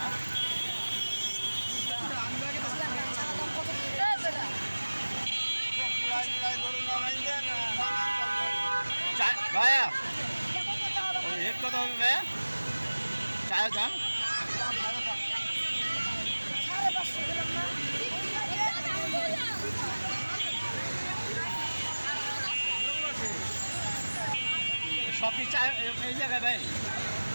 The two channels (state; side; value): inverted; both; correlation -1.00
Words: ভাইয়া রেট কত হবে ভাইয়া? চায়ের দাম সবই চা এই জায়গায় ভাই?